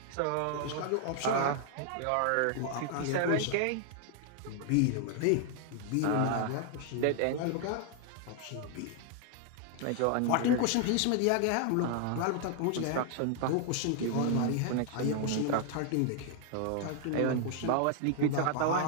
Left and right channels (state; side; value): different; both; correlation 0.00